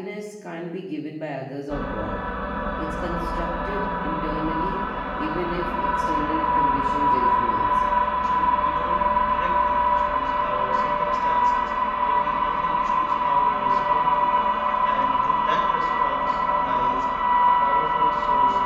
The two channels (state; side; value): identical; both; correlation 1.00